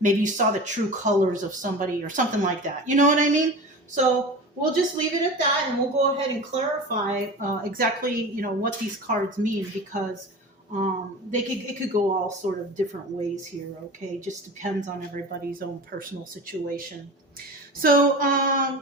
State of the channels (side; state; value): both; normal; correlation 0.33